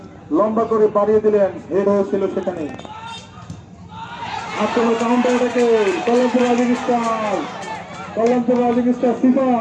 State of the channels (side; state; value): both; identical; correlation 1.00